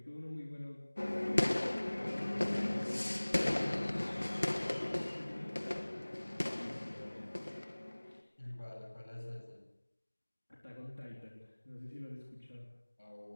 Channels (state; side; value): inverted; both; correlation -1.00